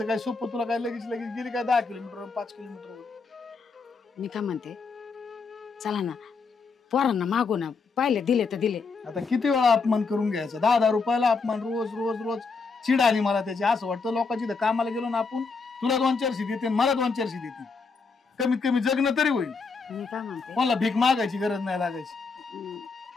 काय सोपं? तुला काय लगेच गेली काय 10 किलोमीटर 5 किलोमीटर? मी काय म्हणते, चला ना पोरांना मागू ना. पाहिले दिले तर दिले. आता किती वेळा अपमान करून घ्यायचा? 10-10 रुपयाला अपमान रोज रोज रोज. चिड आली मला त्याची. असं वाटतं लोकांची कामाला गेलो ना आपण, तुला 2-400 देते मला 2-400 देते. कमीत कमी जगणं तरी होईल. मी काय म्हणते, मला भीक मागायची गरज नाही लागायची.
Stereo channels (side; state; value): right; quieter; 4.6 dB